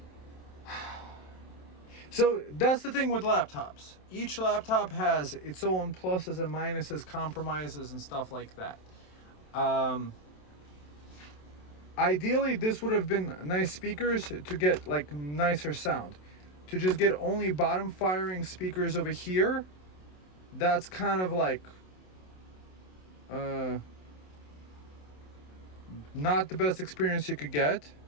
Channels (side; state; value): right; late; 27 ms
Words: So that's the thing with laptops. Each laptop has its own pluses and minuses, compromises and stuff like that. Ideally, this would have been nice speakers to get like nicer sound. To just get only bottom firing speakers over here, that's kind of like not the best experience you could get.